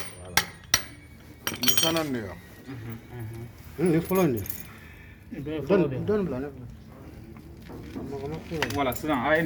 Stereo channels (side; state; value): both; identical; correlation 1.00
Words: Ni fana ne ya. Ni follow ni. Don bla ne. Voilà, sisan a ye